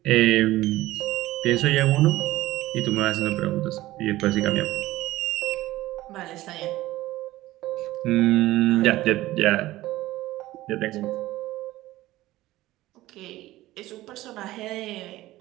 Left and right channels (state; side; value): quieter; left; 16.7 dB